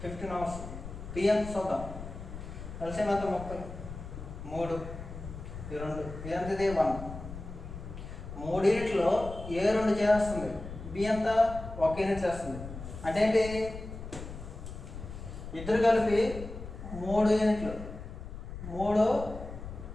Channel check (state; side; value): noise; left; rumble, 10 dB below the sound